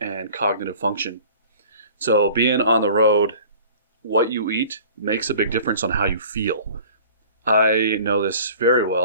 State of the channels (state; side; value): inverted; both; correlation -0.46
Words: and cognitive function. So being on the road, what you eat makes a big difference on how you feel. I know this very